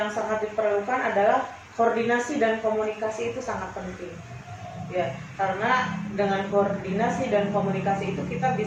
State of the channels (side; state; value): both; identical; correlation 1.00